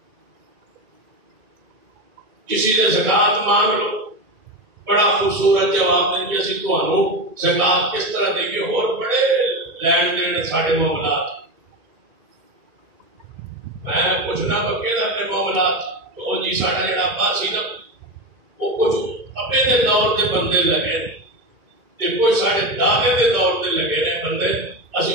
کسی سے زکوٰۃ مانگ لو، بڑا خوبصورت جواب دیں گے اسی تمہوں زکوٰۃ کس طرح دیں گے، اور بڑے لین دین سارے معاملات، میں پوچھنا پکے نا اپنے معاملات تو جی ساڈا جڑا ابا سی نا وہ کچھ ابے دے دور دے بندے لگے تے کچھ ساڈے دادے دے دور دے لگے نے بندے، اسی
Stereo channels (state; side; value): late; left; 2.3 ms